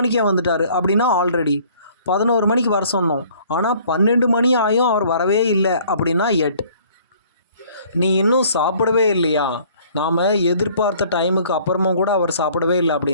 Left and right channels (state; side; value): inverted; both; correlation -0.56